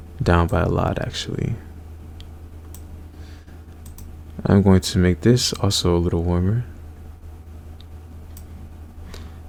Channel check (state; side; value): identical; both; correlation 1.00